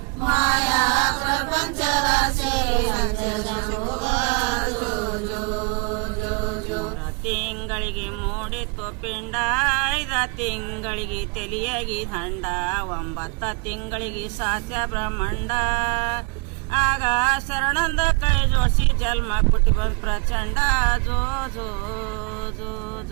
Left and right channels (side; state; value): left; quieter; 31.2 dB